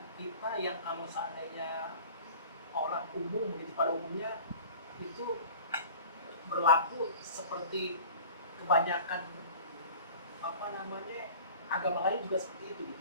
kita yang kalau seandainya orang umum, jadi pada umumnya itu berlaku seperti kebanyakan agama lain juga seperti itu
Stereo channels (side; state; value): both; inverted; correlation -0.42